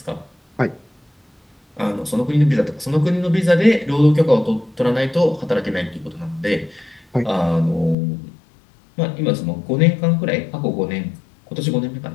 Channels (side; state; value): right; drops out; at 8.0 s